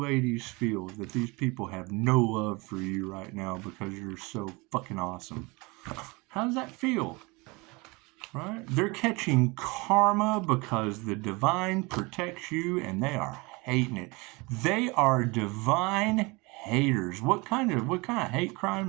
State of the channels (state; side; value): quieter; left; 26.0 dB